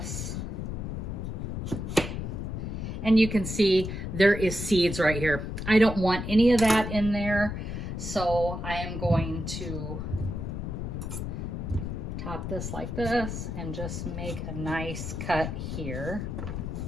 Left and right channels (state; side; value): noise; left; rumble, 4 dB below the sound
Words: And you can see there is seeds right here. I don't want any of that in there, so I am going to top this like this and just make a nice cut here